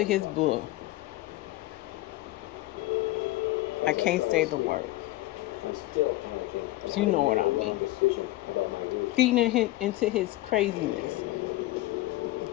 his bull. I can't say the word. But you know what I mean. Feeding into his craziness.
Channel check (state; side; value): quieter; right; 17.6 dB